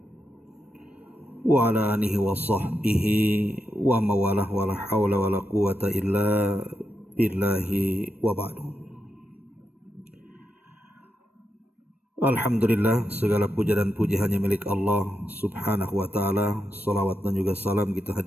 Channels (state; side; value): normal; both; correlation 0.85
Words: wa ala alihi wa sahbihi wa mawalah wa la hawla wa la quwata illa billahi wa ba'du. Alhamdulillah, segala puja dan puji hanya milik Allah subhanahu wa ta'ala. Salawat dan juga salam kita